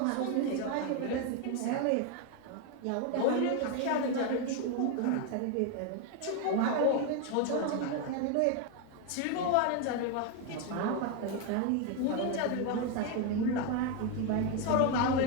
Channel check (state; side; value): different; both; correlation 0.01